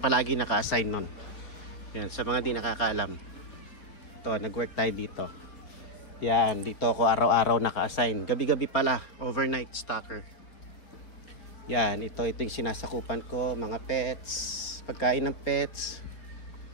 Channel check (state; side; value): late; right; 4.4 ms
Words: naka-assign nun. Ayan. Sa mga di nakakaalam. Ito, nag-work tayo dito. Yan. Dito ako araw-araw naka-assign. Gabi-gabi pala. Overnight stocker. Yan. Ito yung sinasakupan ko. Mga pets. Pagkain ng pets.